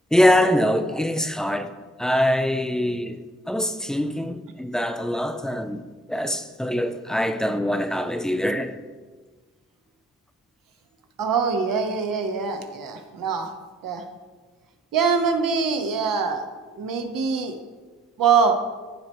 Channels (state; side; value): normal; both; correlation 0.63